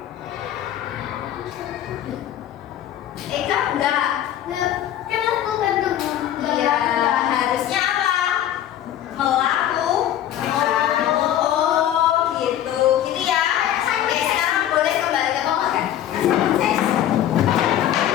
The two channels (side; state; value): right; quieter; 11.5 dB